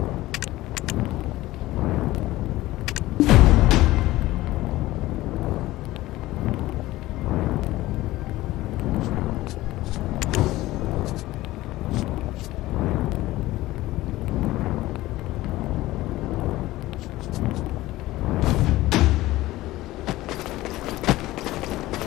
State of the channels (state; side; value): quieter; right; 17.2 dB